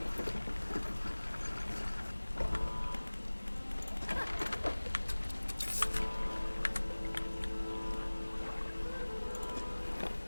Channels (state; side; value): inverted; both; correlation -1.00